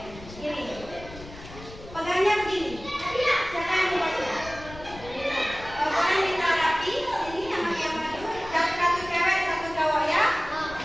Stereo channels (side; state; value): left; noise; rumble, 16 dB below the sound